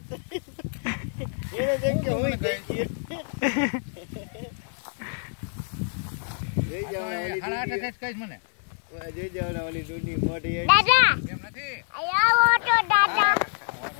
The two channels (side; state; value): right; silent; digital silence